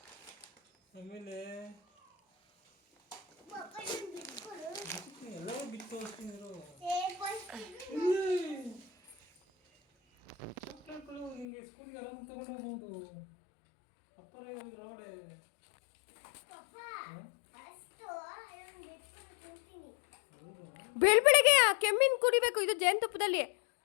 ಆಮೇಲೆ ಎಲ್ಲವೂ ಬಿಟ್ಟು ತೋರಿಸ್ತಿದ್ರು. ಚಾಕ್ಲೇಟ್ಗಳು ನಿಮಗೆ ಸ್ಕೂಲ್ಗೆ ಆರಾಮಾಗಿ ತಗೊಂಡು ಹೋಗ್ಬೋದು. ಅಪ್ಪರೇ ಒಳಗಡೆ ಬೆಳಗ್ಗೆ ಕೆಮ್ಮಿನ ಕುಡಿಬೇಕು, ಇದು ಜೇನುತುಪ್ಪದಲ್ಲಿ.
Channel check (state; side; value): drops out; right; at 11.5 s